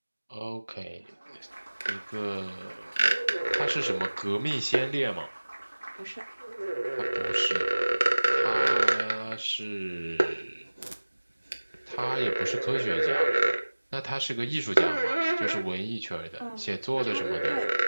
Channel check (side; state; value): both; inverted; correlation -1.00